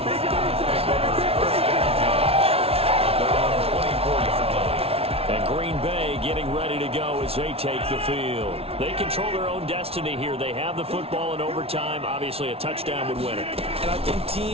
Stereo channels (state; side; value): late; left; 0.29 ms